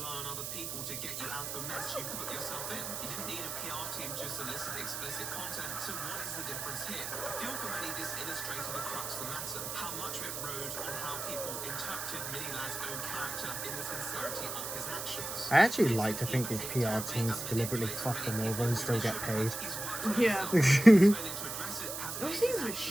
on other people to get you out of the mess you put yourself in. You didn't need a PR team to solicit explicit content, so what is the difference here? I feel for many this illustrated the crux of the matter, how much of it rode on how people interpreted Mini Lad's own character in the sincerity of his actions. I actually like to think these PR teams deliberately fuck them over and still get paid. Yeah. Those things are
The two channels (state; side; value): noise; right; hiss, 5 dB below the sound